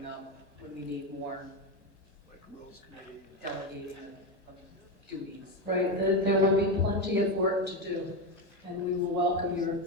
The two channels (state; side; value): normal; both; correlation 0.13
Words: up when we need more Like Rules Committee. delegating of duties. Right, there will be plenty of work to do, and we will welcome your